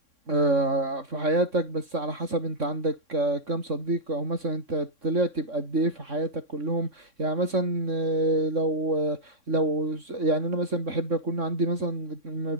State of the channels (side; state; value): left; late; 3.6 ms